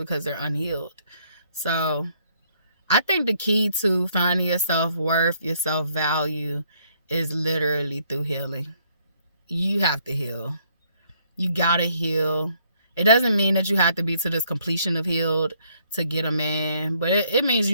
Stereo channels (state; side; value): inverted; both; correlation -0.68